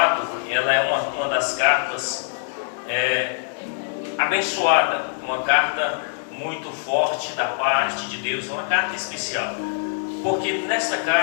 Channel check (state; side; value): silent; right; digital silence